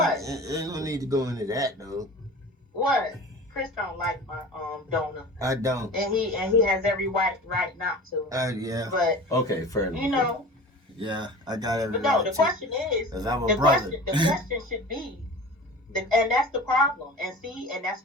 ain't gonna need to go into that though. What? Chris don't like my donor, I don't. and he has every right not to. Yeah, But Okay, fair enough. you know, yeah, I got every but no. right The to. question is, Cause I'm a the brother. question should be, and that's the problem. And see, and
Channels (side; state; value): both; normal; correlation 0.38